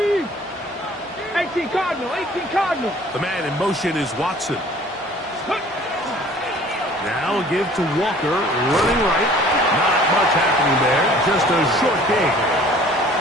18 Cardinal, 18 Cardinal. The man in motion is Watson. Now give to Walker, running right. Not much happening there, just a short gain.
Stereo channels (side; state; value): both; normal; correlation 0.51